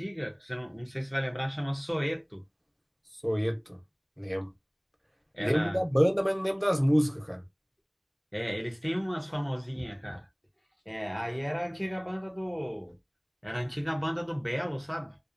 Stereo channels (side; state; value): both; identical; correlation 1.00